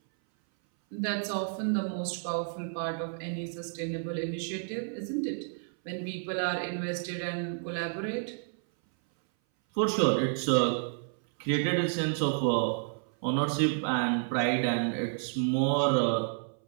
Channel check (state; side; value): silent; left; 57 dB below the other